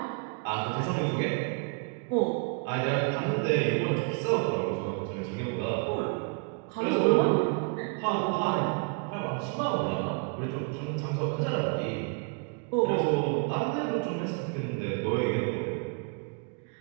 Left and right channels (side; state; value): left; quieter; 36.5 dB